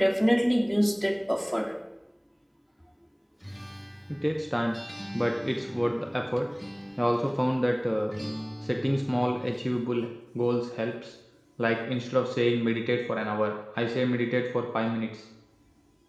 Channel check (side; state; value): both; identical; correlation 1.00